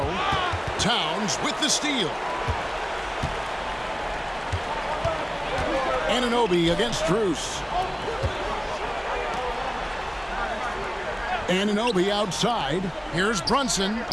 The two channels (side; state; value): both; identical; correlation 1.00